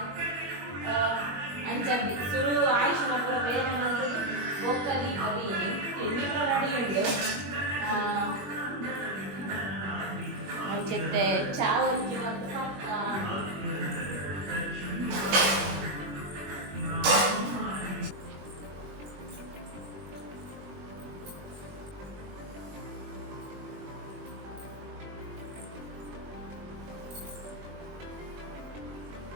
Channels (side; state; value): left; late; 21 ms